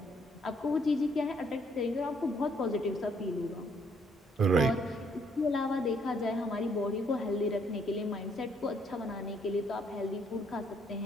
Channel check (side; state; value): both; normal; correlation 0.68